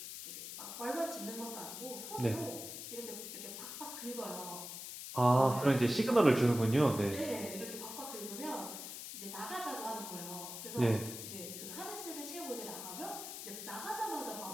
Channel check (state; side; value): noise; left; hiss, 8 dB below the sound